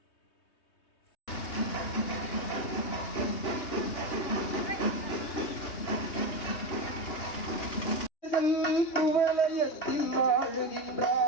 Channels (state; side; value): late; right; 3.2 ms